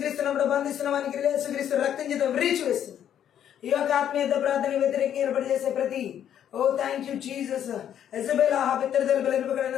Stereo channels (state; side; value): quieter; right; 9.9 dB